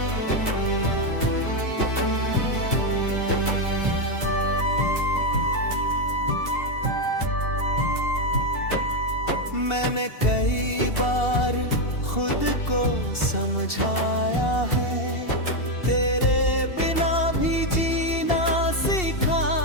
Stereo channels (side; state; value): right; late; 2.7 ms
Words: मैंने कई बार खुद को समझाया है, तेरे बिना भी जीना